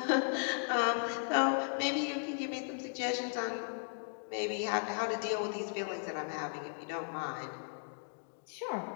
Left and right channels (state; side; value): silent; right; digital silence